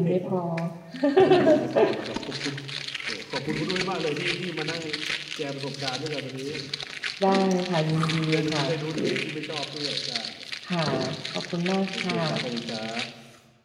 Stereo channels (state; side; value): identical; both; correlation 1.00